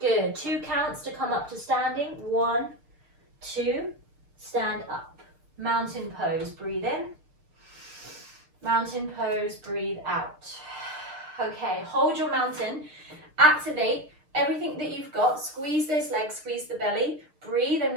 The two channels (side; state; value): left; late; 6.5 ms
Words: 2 counts to come up to standing. 1, 2. Stand up. Mountain pose. Breathe in. Mountain pose. Breathe out. Okay. Hold your mountain. Activate everything that you've got. Squeeze those legs. Squeeze the belly. Breathe. I'm